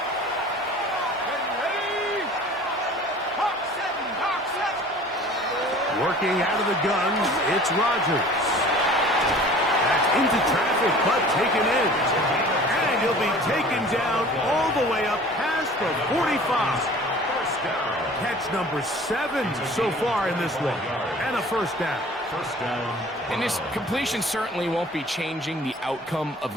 Ready? Hawk 70, Hawk 70. Working out of the gun, it's Rodgers. That's into traffic, but taken in. And he'll be taken down all the way up past the 45. Catch number 7 so far in this one. And a first down. First down. And this completion certainly won't be changing the outcome of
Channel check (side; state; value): both; normal; correlation 0.46